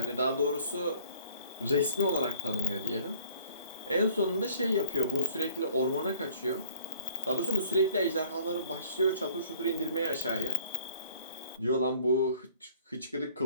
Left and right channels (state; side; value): inverted; both; correlation -0.53